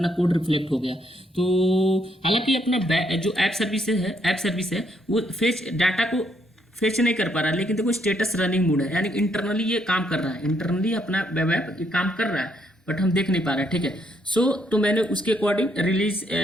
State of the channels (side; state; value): both; normal; correlation 0.73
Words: कोड रिफ्लेक्ट हो गया। तो हालांकि अपना जो ऐप सर्विस है वो फेच डाटा को फेच नहीं कर पा रहा, लेकिन देखो स्टेटस रनिंग मोड है, यानी इंटरनली ये काम कर रहा है, इंटरनली अपना वेब ऐप ये काम कर रहा है, बट हम देख नहीं पा रहे हैं, ठीक है। तो मैंने उसके अकॉर्डिंग रिलीज